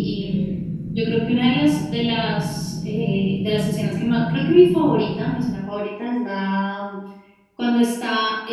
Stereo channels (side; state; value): both; identical; correlation 1.00